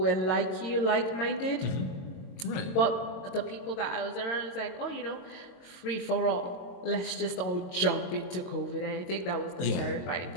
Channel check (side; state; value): right; late; 22 ms